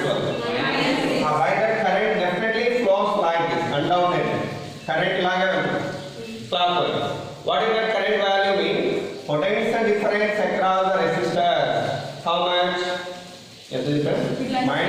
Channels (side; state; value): both; identical; correlation 1.00